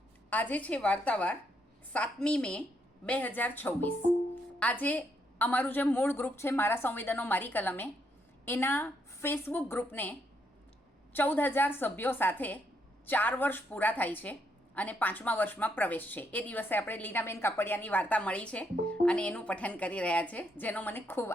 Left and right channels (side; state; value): both; normal; correlation 0.76